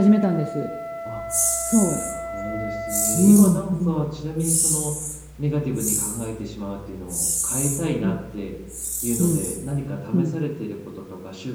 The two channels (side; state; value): both; identical; correlation 1.00